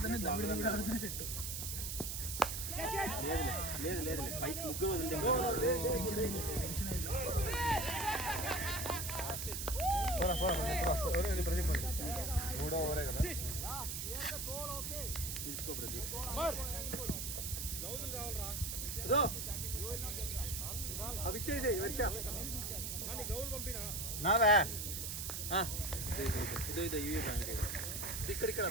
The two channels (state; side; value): noise; right; hiss, 4 dB below the sound